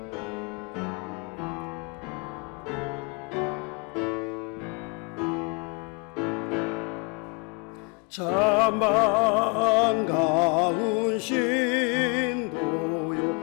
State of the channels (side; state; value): right; quieter; 31.0 dB